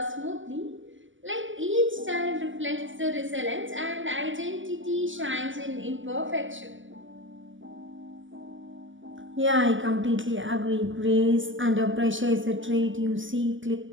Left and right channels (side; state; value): left; late; 0.56 ms